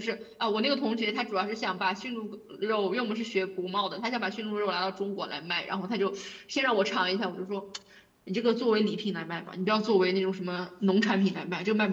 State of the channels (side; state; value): both; identical; correlation 1.00